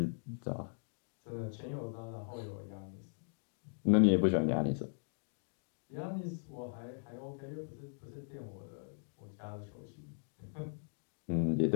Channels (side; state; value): right; silent; digital silence